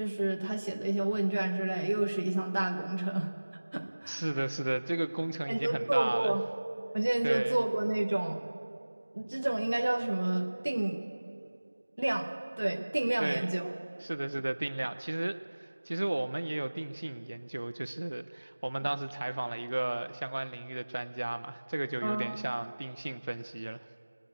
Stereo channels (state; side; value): inverted; both; correlation -1.00